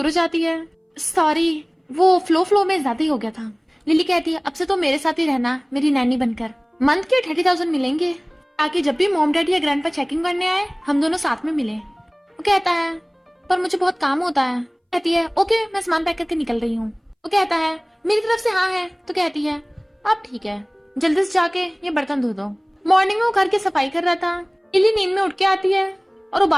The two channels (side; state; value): both; identical; correlation 1.00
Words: हो जाती है। सॉरी, वो फ्लो में ज्यादा ही हो गया था। लिली कहती है अब से तो मेरे साथ ही रहना मेरी नैनी बनकर। मंथ के 30,000 मिलेंगे ताकि जब भी मॉम डैडी या ग्रैंडपा चेकिंग करने आए हम दोनों साथ में मिले। वो कहता है पर मुझे बहुत काम होता है। कहती है ओके मैं सामान पैक करके निकल रही हूँ। वो कहता है मेरी तरफ से हाँ है। तो कहती है अब ठीक है, जल्दी से जाके ये बर्तन धो दो। मॉर्निंग में वो घर की सफाई कर रहा था। लिली नींद में उठ के आती है और वो